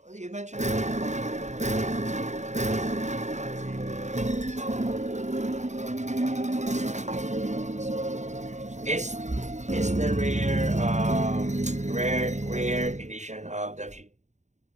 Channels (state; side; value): late; left; 0.34 ms